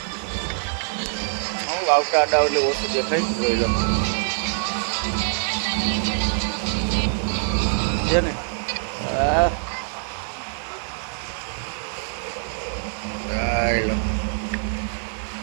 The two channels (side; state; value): left; silent; digital silence